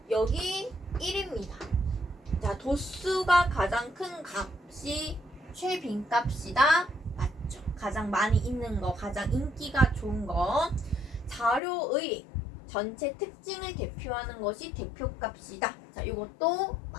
여기 1입니다. 자, 도수가 가장 큰 값이 최빈값이다. 맞죠? 가장 많이 있는 거, 가장 인기가 좋은 거. 자료의 전체 특징을 대표하는 것이 대표값이다. 자, 이것도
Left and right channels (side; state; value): right; drops out; at 11.6 s